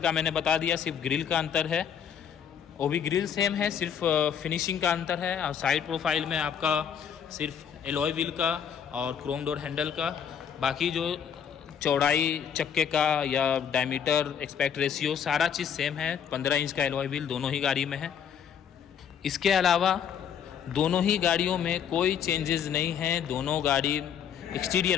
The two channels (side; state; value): right; quieter; 8.1 dB